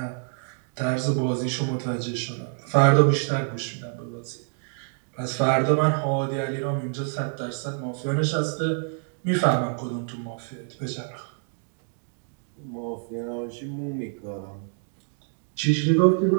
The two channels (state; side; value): silent; left; 59 dB below the other